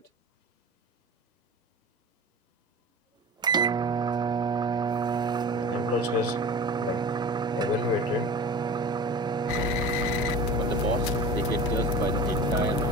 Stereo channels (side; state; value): both; normal; correlation 0.35